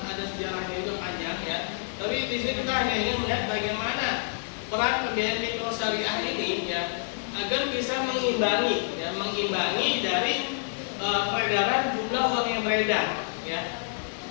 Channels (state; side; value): silent; right; digital silence